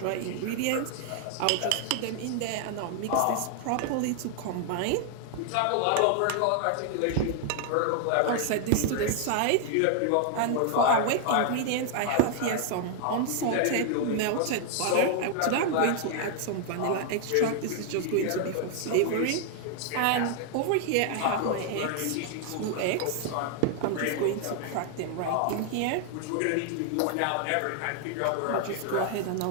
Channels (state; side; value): different; both; correlation 0.00